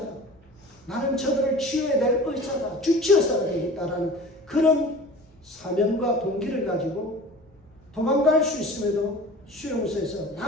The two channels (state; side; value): normal; both; correlation 0.40